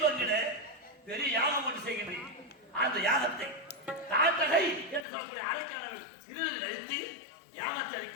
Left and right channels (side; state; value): right; drops out; at 5.1 s